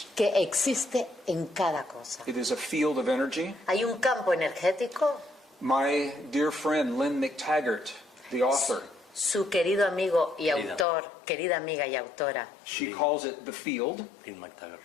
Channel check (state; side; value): drops out; right; at 10.9 s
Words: que existe en cada cosa. It is a field of energy. Hay un campo energético. My dear friend Lynn McTaggart, the author, Su querido amigo y Querida. autor, querida amiga y autora, she calls it the field. In McTaggart.